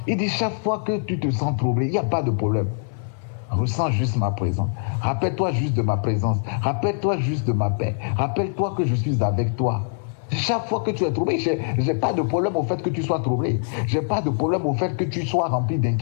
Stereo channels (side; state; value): right; silent; 57 dB below the other